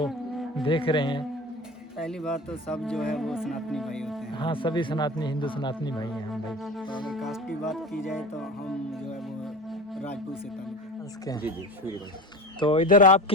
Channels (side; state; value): both; normal; correlation 0.33